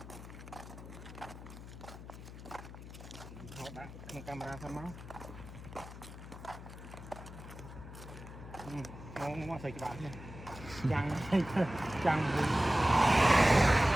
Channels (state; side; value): noise; left; hum, 13 dB below the sound